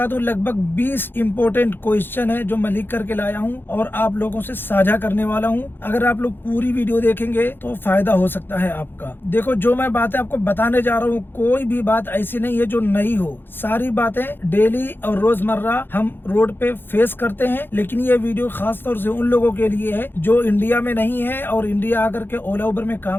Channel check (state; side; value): late; right; 0.10 ms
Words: दूं, लगभग 20 इम्पोर्टेंट क्वेश्चन है जो मैं लिख करके लाया हूं और आप लोगों से साझा करने वाला हूं। अगर आप लोग पूरी वीडियो देखेंगे तो फायदा हो सकता है आपका। देखो, जो मैं बातें आपको बताने जा रहा हूँ, कोई भी बात ऐसी नहीं है जो नई हो। सारी बातें डेली और रोजमर्रा हम रोड पे फेस करते हैं। लेकिन ये वीडियो खास तौर से उन लोगों के लिए है जो इंडिया में नहीं है और इंडिया आकर के ओला उबर में